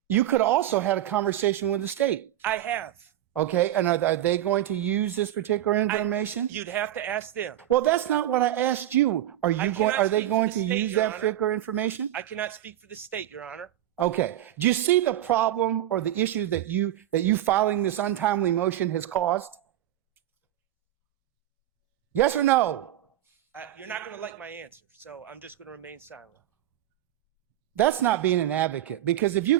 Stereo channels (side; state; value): left; quieter; 12.7 dB